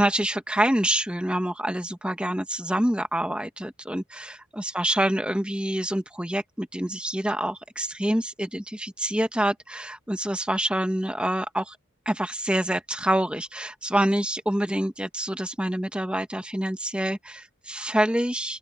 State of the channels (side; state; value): both; normal; correlation 0.85